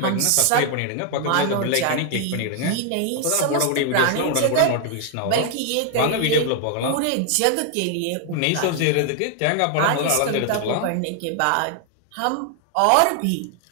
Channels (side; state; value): both; different; correlation 0.00